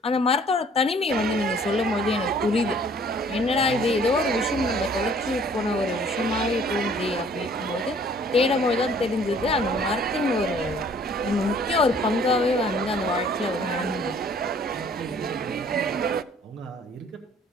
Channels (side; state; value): both; normal; correlation 0.56